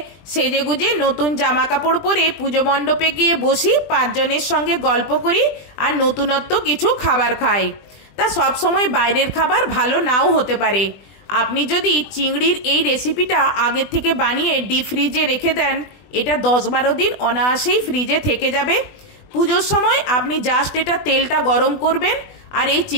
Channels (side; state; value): right; late; 20 ms